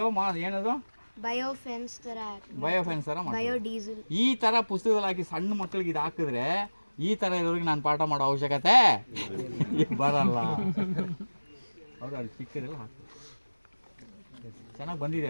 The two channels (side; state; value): both; inverted; correlation -1.00